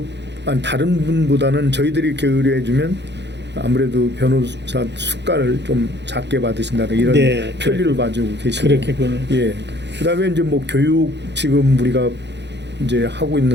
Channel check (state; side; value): late; left; 0.51 ms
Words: 분보다는 저희들이 이렇게 의뢰해주면 아무래도 변호사 수가를 좀 작게 받으신다는 이런 편리를 봐주고 계시고. 그렇겠군요. 예. 그다음에 이제 뭐 교육 지금 우리가 이제 하고